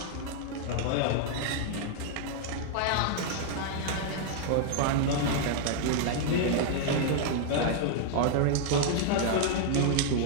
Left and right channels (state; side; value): different; both; correlation -0.01